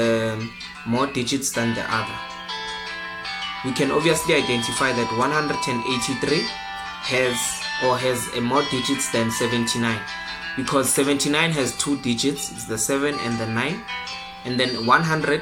more digits than the other? We can obviously identify that 183 has a more digits than 79, because 79 has 2 digits, it's the 7 and the 9, and then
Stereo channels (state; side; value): identical; both; correlation 1.00